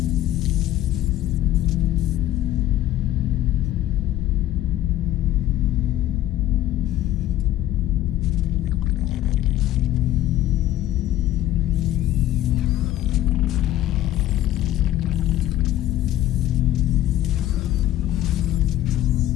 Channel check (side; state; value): right; quieter; 13.7 dB